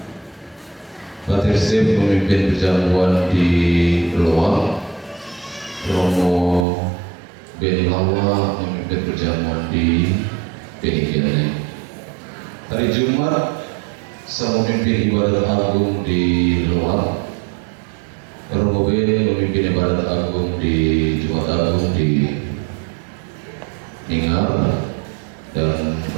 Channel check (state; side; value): drops out; left; at 6.7 s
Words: Pater Step memimpin perjamuan di Loak, Romo Ben Lawa memimpin perjamuan di Penikiane. Hari Jumat saya memimpin ibadat agung di Loak, Romo Ben memimpin ibadat agung di Jumat Agung di Ingar, dan